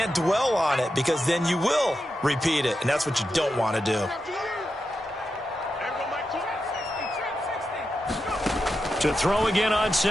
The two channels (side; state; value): both; normal; correlation 0.88